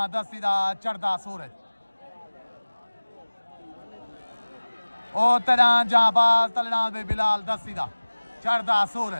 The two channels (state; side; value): inverted; both; correlation -1.00